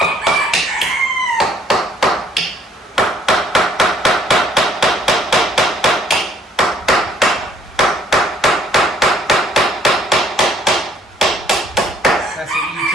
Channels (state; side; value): normal; both; correlation 0.62